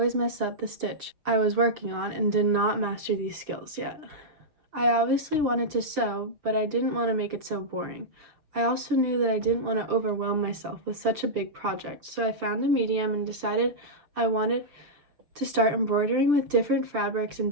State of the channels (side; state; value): left; late; 6.8 ms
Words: mess up the stitch I was working on and did not master these skills yet. I obviously wanted to sew, but I didn't want to make it so boring. I also knew that I didn't want to overwhelm myself with such a big project, so I found a medium and decided I wanted to start embroidering with different fabrics and